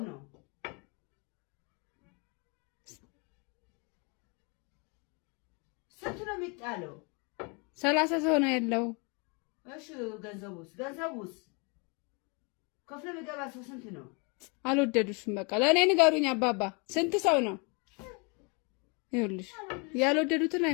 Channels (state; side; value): quieter; right; 32.4 dB